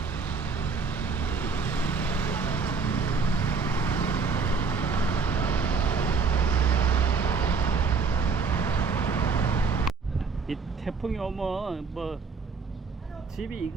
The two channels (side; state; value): left; quieter; 5.3 dB